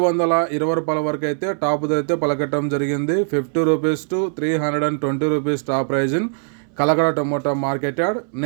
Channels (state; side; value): silent; left; 62 dB below the other